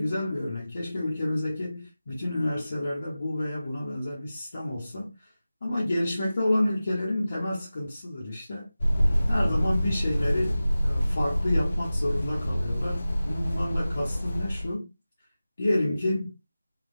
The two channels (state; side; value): inverted; both; correlation -0.95